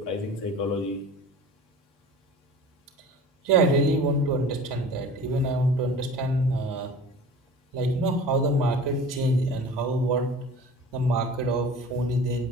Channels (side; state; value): both; normal; correlation 0.41